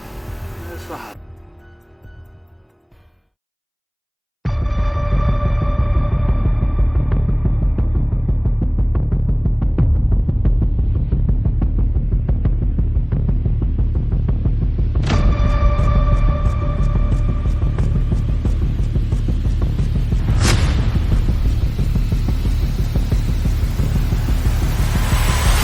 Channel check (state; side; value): identical; both; correlation 1.00